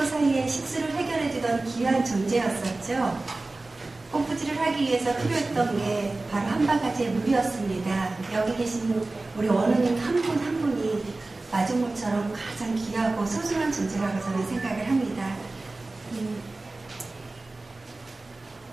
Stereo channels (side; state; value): left; quieter; 3.2 dB